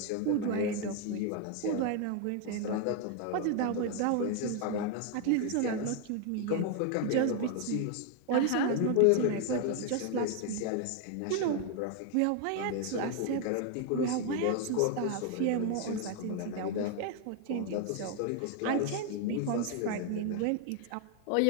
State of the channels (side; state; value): both; different; correlation 0.00